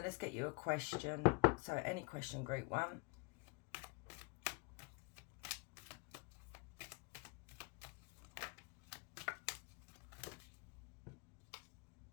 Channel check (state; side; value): quieter; right; 29.0 dB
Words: let's get you a question. So any question, group one.